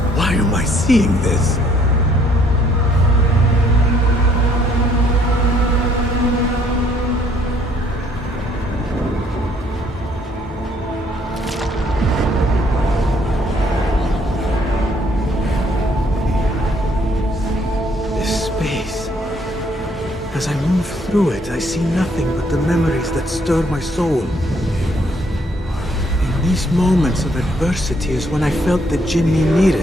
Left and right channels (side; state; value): both; normal; correlation 0.65